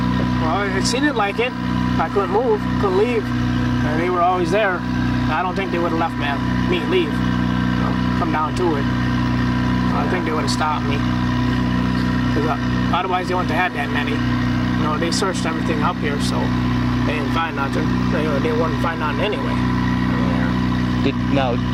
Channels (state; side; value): identical; both; correlation 1.00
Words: Well, it seemed like it. I couldn't move, couldn't leave, and they were always there. I don't think they would have left me leave, you know, come down to it. I think they would have stopped me. Because otherwise they wouldn't have had that many. You know, they searched everything up here, so they didn't find nothing. They wouldn't find nothing anyway.